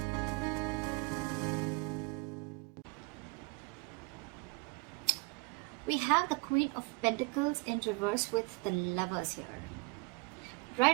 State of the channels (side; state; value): left; quieter; 30.2 dB